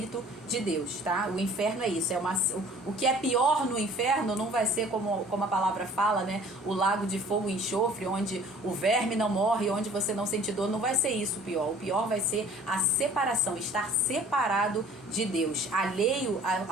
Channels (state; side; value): normal; both; correlation 0.51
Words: de Deus, tá? O inferno é isso, o que é pior no inferno não vai ser como a palavra fala, né? O lago de fogo e enxofre, onde o verme não morre, onde você não sente dor, não vai ser isso o pior. O pior vai ser a separação, estar separado de Deus, alheio